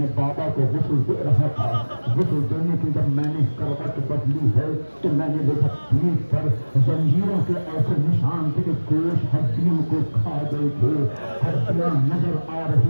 बाबा को गुस्ल दे रहा था, गुस्ल देने की जब मैंने करवट बदली है तो मैंने देखा पीठ पर जंजीरों के ऐसे निशान थे कि गोश्त हड्डियों को खा गए थे, हड्डियां नजर आ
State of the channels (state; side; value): inverted; both; correlation -1.00